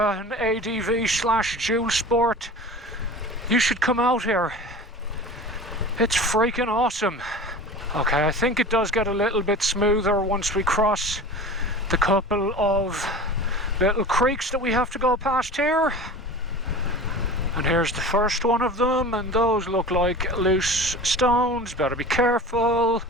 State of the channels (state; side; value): normal; both; correlation 0.36